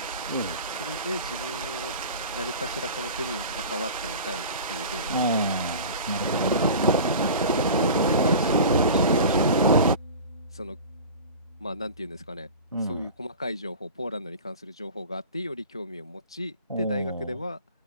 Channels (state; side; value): inverted; both; correlation -0.36